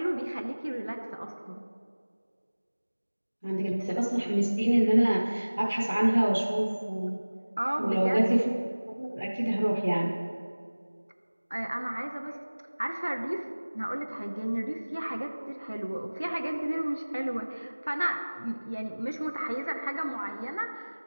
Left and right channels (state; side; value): inverted; both; correlation -1.00